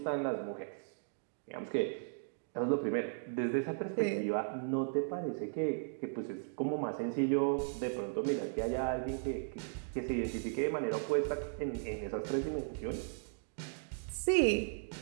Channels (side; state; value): left; silent; digital silence